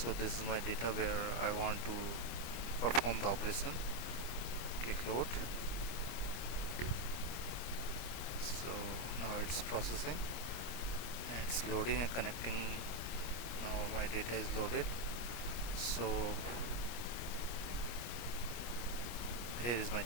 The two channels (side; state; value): right; late; 25 ms